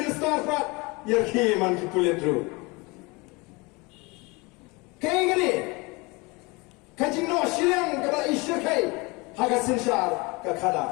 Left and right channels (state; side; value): quieter; right; 26.1 dB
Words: starfat. Yerki man ki kulit dulu. Kaya gini. Kajing no siang kepada isyur kai. Haga sinsyar ke